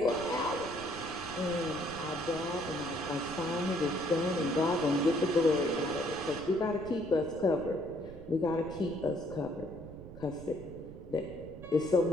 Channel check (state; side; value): noise; right; rumble, 15 dB below the sound